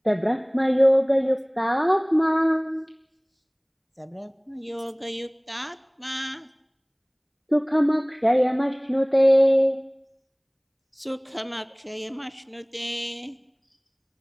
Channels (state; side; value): identical; both; correlation 1.00